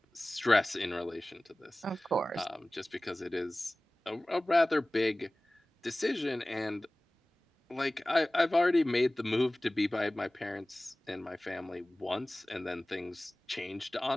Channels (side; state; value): both; normal; correlation 0.98